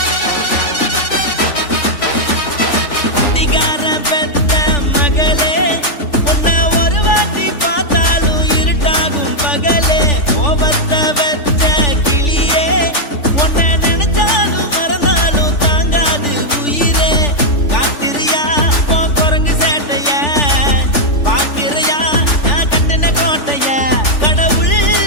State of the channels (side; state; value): right; late; 3.4 ms